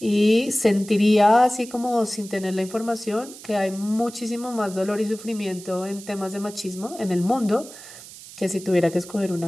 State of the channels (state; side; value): noise; right; hiss, 16 dB below the sound